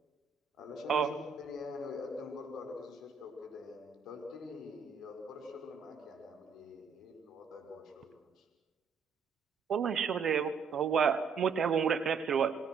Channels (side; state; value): left; quieter; 5.7 dB